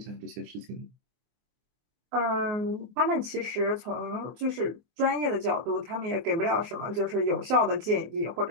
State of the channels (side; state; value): left; late; 24 ms